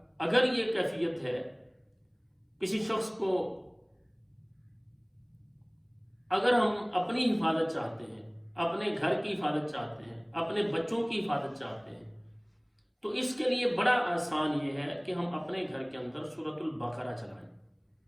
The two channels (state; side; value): identical; both; correlation 1.00